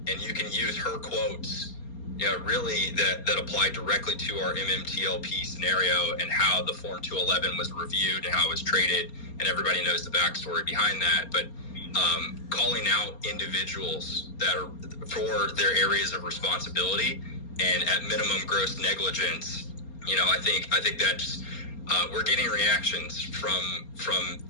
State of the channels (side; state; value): right; late; 4.3 ms